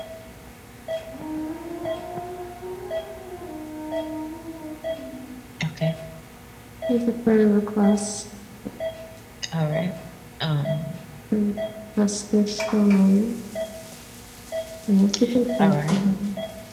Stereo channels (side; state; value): both; identical; correlation 1.00